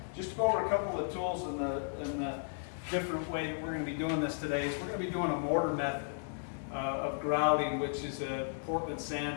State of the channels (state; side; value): silent; right; digital silence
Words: Just to go over a couple of the tools and the different way that we're going to be doing this today is we're going to be doing a mortar method of grouting, which is a Portland